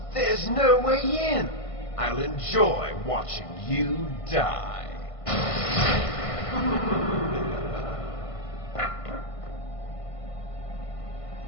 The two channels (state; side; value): late; right; 1.5 ms